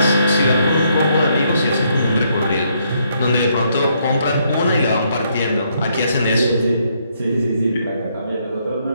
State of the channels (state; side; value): inverted; both; correlation -0.72